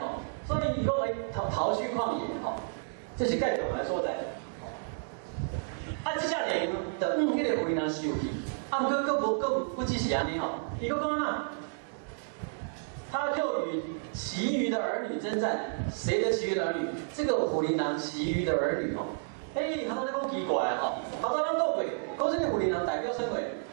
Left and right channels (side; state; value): left; silent; digital silence